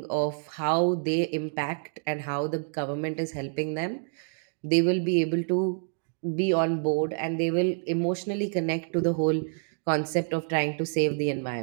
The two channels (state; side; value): silent; left; 59 dB below the other